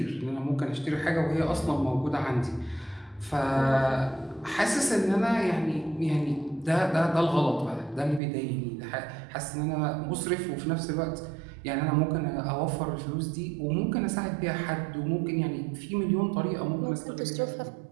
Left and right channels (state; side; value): drops out; left; at 8.2 s